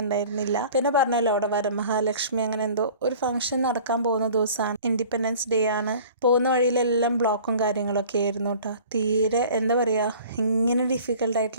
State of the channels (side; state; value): both; inverted; correlation -0.46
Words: പിന്നെ പറഞ്ഞല്ലോ അവിടെ വരമഹാലക്ഷ്മി അങ്ങനെ എന്തോ ഒരു ഫംഗ്ഷൻ നടക്കാൻ പോകുന്ന ദിവസമാണ്. ഇൻഡിപെൻഡൻസ് ഡേ ആണ്. പോകുന്ന വഴിയിലെല്ലാം ബ്ലോക്കും കാര്യങ്ങളൊക്കെ ആയിരുന്നു കേട്ടോ. തീരെ എന്താ പറയുക, ഇങ്ങനെ